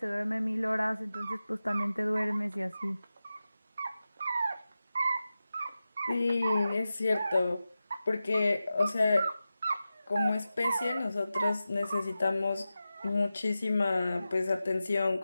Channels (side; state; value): both; inverted; correlation -0.94